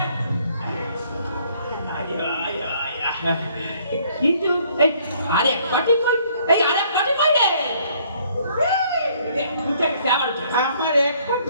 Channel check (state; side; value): inverted; both; correlation -0.62